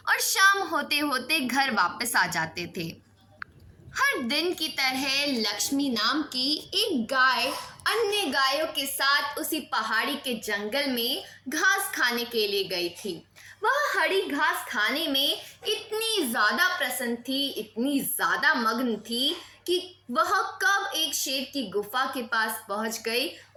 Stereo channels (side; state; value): both; identical; correlation 1.00